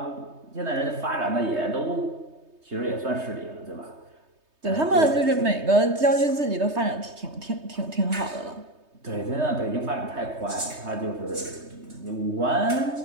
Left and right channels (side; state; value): left; late; 3.2 ms